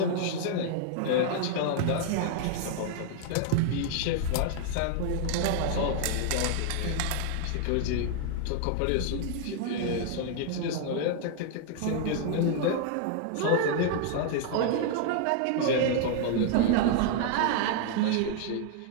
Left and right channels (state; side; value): different; both; correlation 0.00